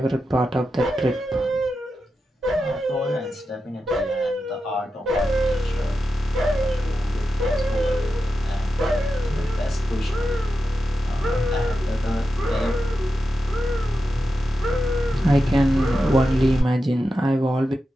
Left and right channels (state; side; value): normal; both; correlation 0.90